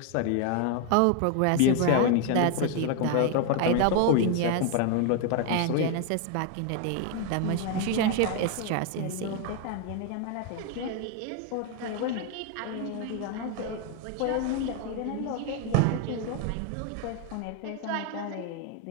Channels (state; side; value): different; both; correlation 0.01